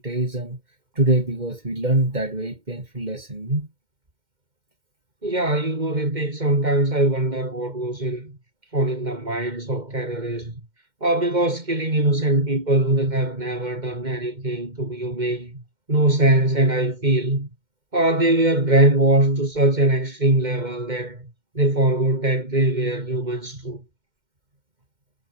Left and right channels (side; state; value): left; late; 2.1 ms